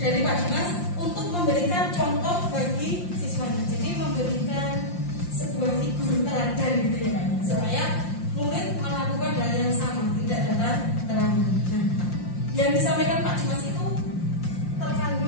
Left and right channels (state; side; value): late; right; 5.7 ms